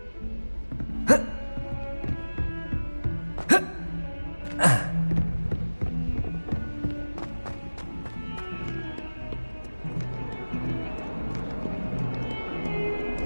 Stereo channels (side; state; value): both; inverted; correlation -1.00